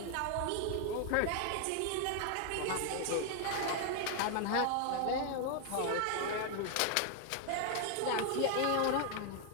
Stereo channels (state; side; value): different; both; correlation 0.00